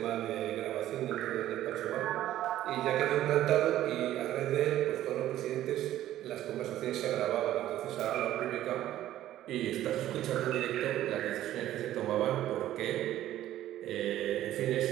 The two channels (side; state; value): left; quieter; 13.2 dB